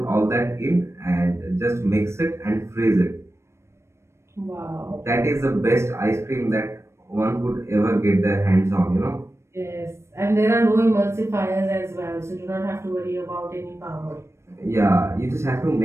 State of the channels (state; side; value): late; left; 0.13 ms